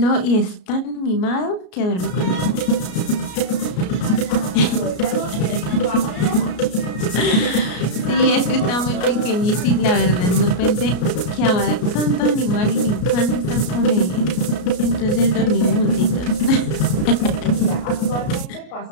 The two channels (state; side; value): late; right; 33 ms